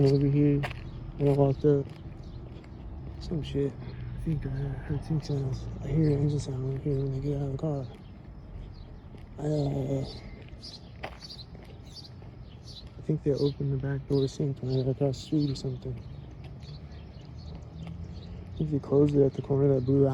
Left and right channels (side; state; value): both; identical; correlation 1.00